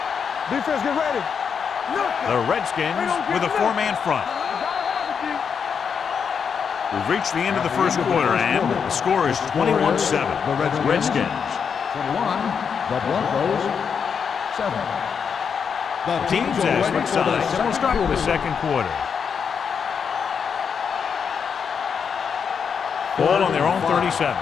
Defense, get ready. The Redskins with a 4-man front. We've reached the end of the first quarter, and the score is 21-7. The Redskins. 21. The Broncos 7. The Teams as switch sides. So we'll start with the second quarter. Ball on their own 37.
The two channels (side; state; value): right; quieter; 6.7 dB